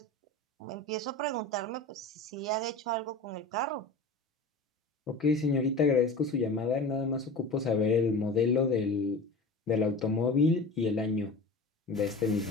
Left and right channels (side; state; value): right; quieter; 3.0 dB